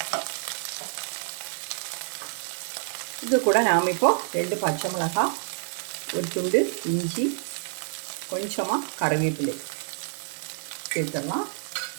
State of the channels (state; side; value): silent; left; digital silence